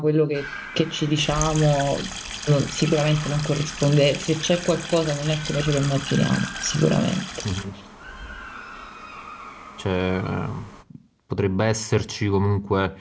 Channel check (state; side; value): identical; both; correlation 1.00